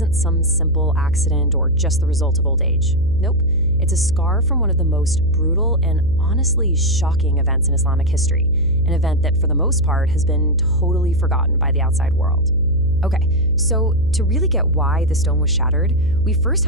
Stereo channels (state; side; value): noise; right; hum, 8 dB below the sound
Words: some simple accident or just the result of old age. Nope, it's a scar from one of the most brutal and honestly shocking events in Islamic history, an event that for the most part has been totally forgotten by the outside world. Okay, so to really get why the stone was shattered, we first